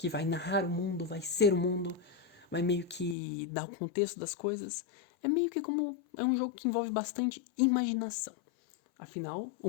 vai narrar o mundo, vai ser o mundo, vai meio que dar o contexto das coisas. É meio que como, é um jogo que envolve bastante imaginação. Afinal, o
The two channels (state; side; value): drops out; right; at 3.2 s